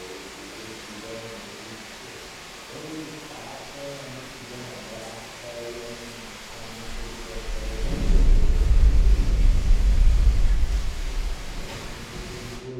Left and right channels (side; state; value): both; identical; correlation 1.00